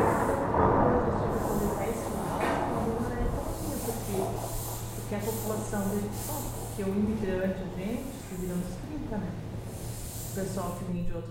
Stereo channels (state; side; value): identical; both; correlation 1.00